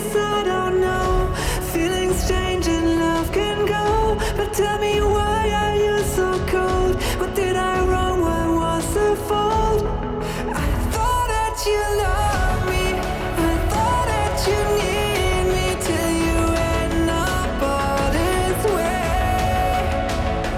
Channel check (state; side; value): identical; both; correlation 1.00